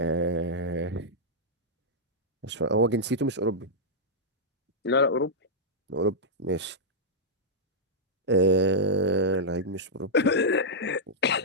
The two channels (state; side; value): normal; both; correlation -0.09